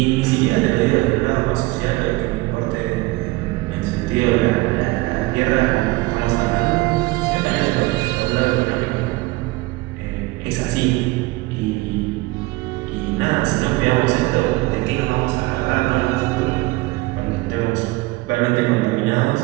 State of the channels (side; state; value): left; quieter; 21.6 dB